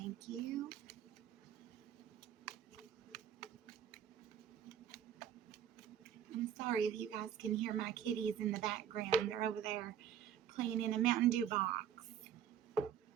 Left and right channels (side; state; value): left; quieter; 9.2 dB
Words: you. I'm sorry if you guys can hear my kitties in the background. They're over there playing in a Mountain Dew box.